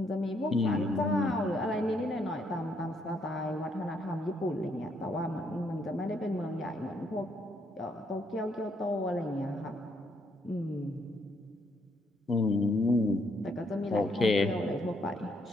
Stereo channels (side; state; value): both; normal; correlation 0.72